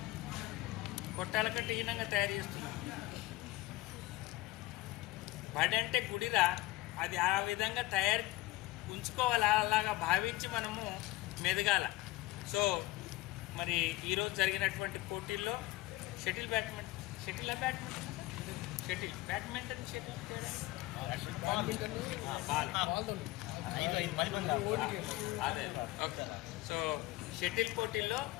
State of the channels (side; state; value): right; quieter; 18.6 dB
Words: కొట్టాల కంటే హీనంగా తయారు చేస్తున్నాం. బడి అంటే గుడిలా, అది ఆ విధంగా ఉంచుకోవాలి. అలాగా భావించి మనము మెదగాల. సో మరి ఈరోజు జరిగినటువంటి పోటీల్లో బ్యాడ్మింటన్ అదే ఓకే. సో షటిల్ పోటీల్లో